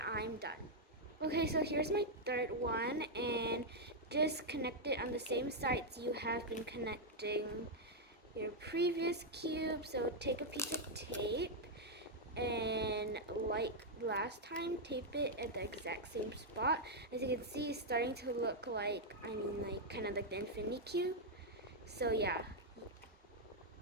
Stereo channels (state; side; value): normal; both; correlation -0.02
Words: done. Okay, so here's my third one, and just connect it on the same sides you have been connecting your previous cube. So take a piece of tape, and like last time, tape it at the exact same spot. As you can see, it's starting to look like, kind of like the infinity cube. So yeah,